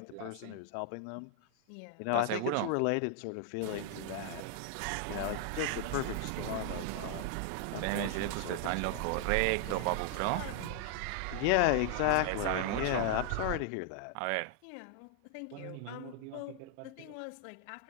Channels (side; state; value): both; different; correlation 0.00